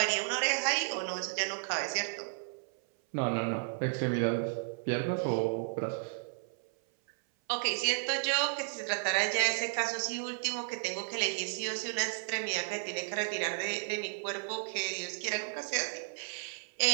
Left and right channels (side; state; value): left; silent; 56 dB below the other